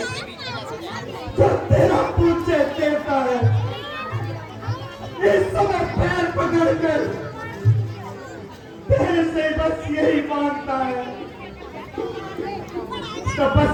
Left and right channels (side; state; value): both; identical; correlation 1.00